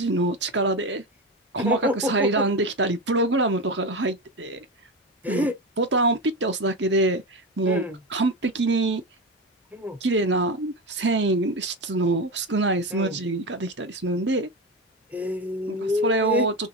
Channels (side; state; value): both; normal; correlation 0.19